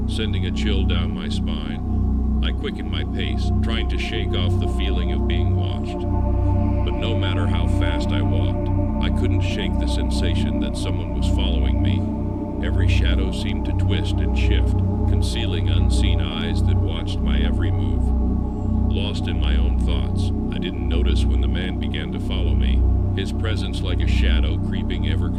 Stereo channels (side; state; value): both; identical; correlation 1.00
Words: sending a chill down my spine. I quickened my pace, trying to shake off the feeling of being watched. But no matter how fast I walked, I couldn't shake the sensation that someone was following me. Every shadow seemed to twist and shift, concealing unseen eyes that watched my every move. Lost in my own thoughts, I didn't notice when the man began to follow me, his presence like a shadow creeping ever